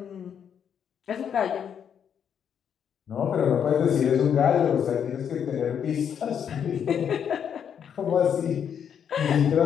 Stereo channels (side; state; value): right; quieter; 8.1 dB